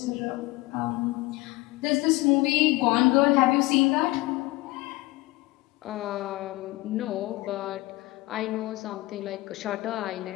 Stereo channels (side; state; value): right; quieter; 20.5 dB